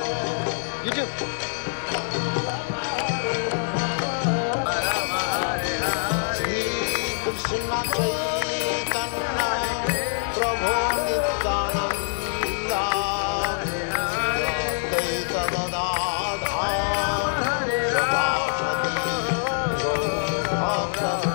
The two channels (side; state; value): right; silent; 62 dB below the other